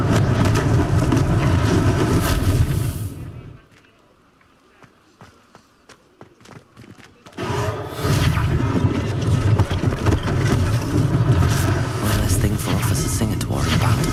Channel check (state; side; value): identical; both; correlation 1.00